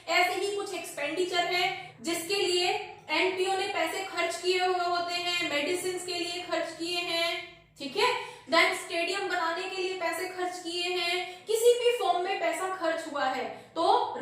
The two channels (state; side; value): identical; both; correlation 1.00